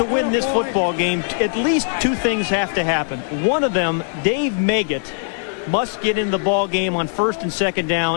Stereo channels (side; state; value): right; silent; 66 dB below the other